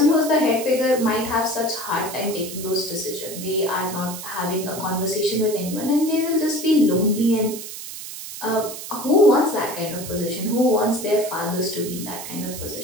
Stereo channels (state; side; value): noise; right; hiss, 10 dB below the sound